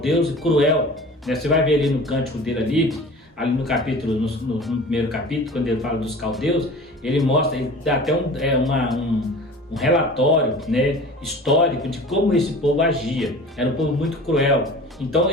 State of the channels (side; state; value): both; normal; correlation 0.41